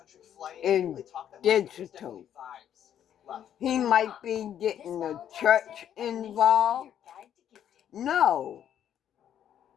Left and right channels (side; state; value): right; quieter; 10.0 dB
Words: flight. and They talked that much, but there's digital. definitely vibes. Love. He might be getting the church involved. No.